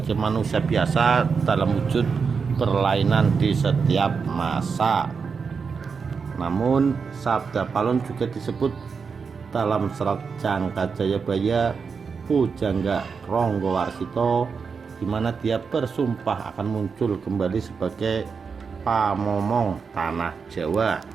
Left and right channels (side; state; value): left; quieter; 5.5 dB